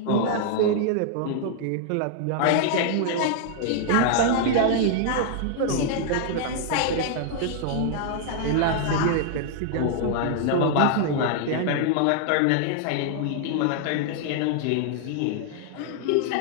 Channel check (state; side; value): different; both; correlation 0.00